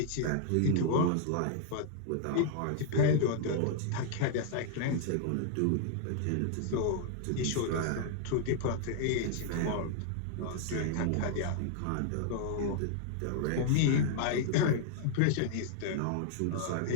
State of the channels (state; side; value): different; both; correlation -0.01